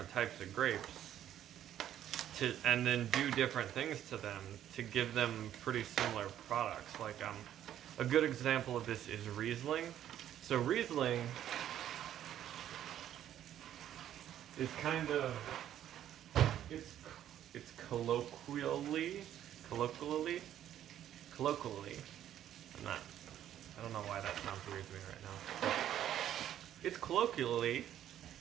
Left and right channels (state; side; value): quieter; left; 11.2 dB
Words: types of grapes and then do different things to them to give them pretty similar products. Like a good example of this is Riesling. So Riesling is kind of it's colloquially. I don't know why that sounds weird to me right now. It's commonly